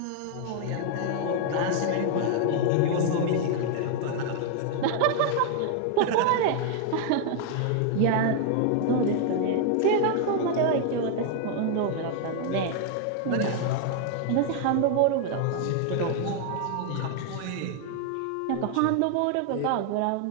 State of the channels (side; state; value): both; different; correlation 0.00